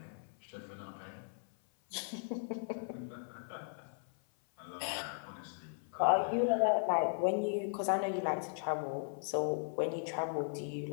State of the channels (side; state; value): right; silent; 53 dB below the other